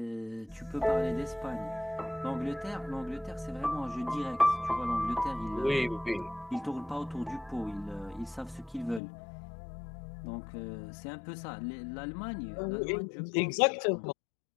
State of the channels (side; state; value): right; drops out; at 9.0 s